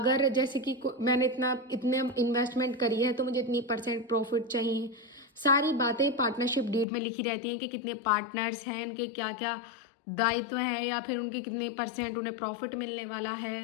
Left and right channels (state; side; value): drops out; right; at 6.9 s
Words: जैसे कि मैंने इतने इन्वेस्टमेंट करी है तो मुझे इतनी परसेंट प्रॉफिट चाहिए। सारी बातें पार्टनरशिप डीड में लिखी रहती हैं कि कितने पार्टनर्स हैं, इनके क्या क्या दायित्व हैं, या फिर उनके कितने परसेंट उन्हें प्रॉफिट मिलने वाला